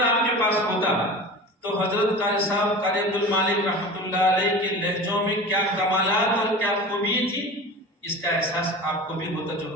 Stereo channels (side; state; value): both; normal; correlation 0.34